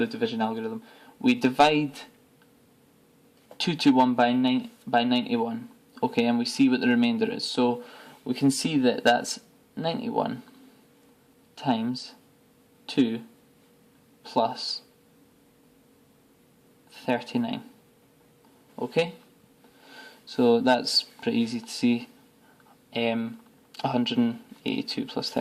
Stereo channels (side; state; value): both; identical; correlation 1.00